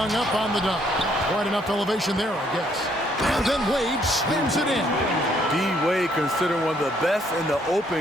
up on the dunk. Quite enough elevation there, I guess. And then Wade slams it in. D-Wade, considered one of the best in the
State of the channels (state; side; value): normal; both; correlation 0.68